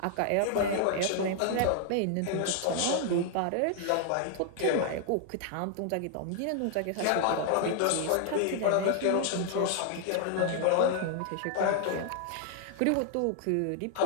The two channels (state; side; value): different; both; correlation 0.00